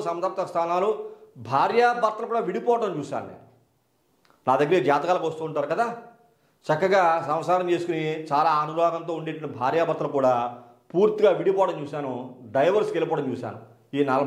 సంతప్త స్థానాలు, భార్యాభర్తలు కూడా విడిపోవటం చూశాను నేను. నా దగ్గర జాతకాలకు వస్తూ ఉంటారు కదా, చక్కగా సంసారం చేసుకుని చాలా అనురాగంతో ఉండేటువంటి భార్యాభర్తలు కూడా పూర్తిగా విడిపోవడం చూశాను, డైవర్స్కి వెళ్ళిపోవడం చూశాను ఈ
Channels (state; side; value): identical; both; correlation 1.00